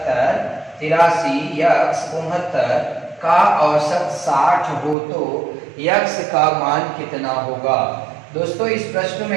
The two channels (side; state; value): left; drops out; at 5.0 s